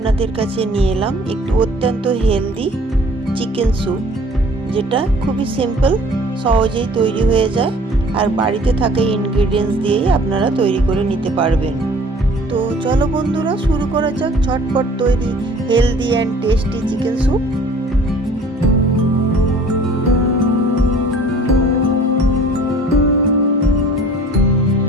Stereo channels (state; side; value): normal; both; correlation 0.50